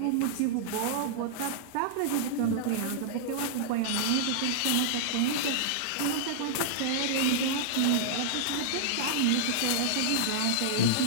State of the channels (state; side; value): different; both; correlation -0.01